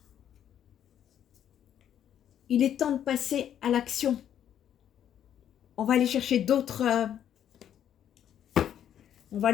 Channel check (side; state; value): right; quieter; 10.0 dB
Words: Il est temps de passer à l'action. On va aller chercher d'autres... on va